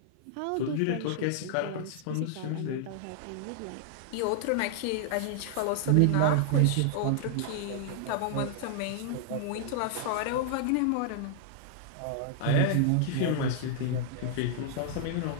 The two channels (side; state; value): both; different; correlation -0.01